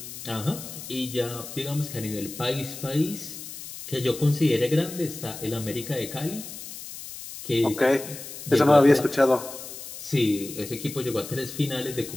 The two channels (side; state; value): left; noise; hiss, 11 dB below the sound